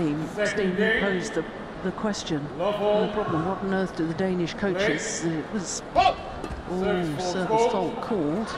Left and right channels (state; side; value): identical; both; correlation 1.00